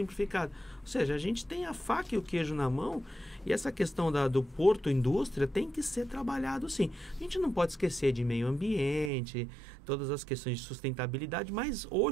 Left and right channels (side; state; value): left; drops out; at 9.1 s